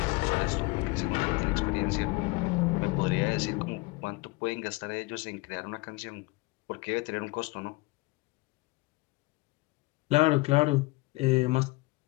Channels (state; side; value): quieter; right; 23.7 dB